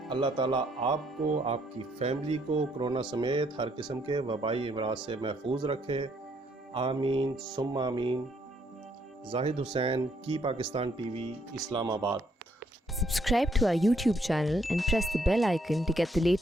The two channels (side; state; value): both; normal; correlation 0.70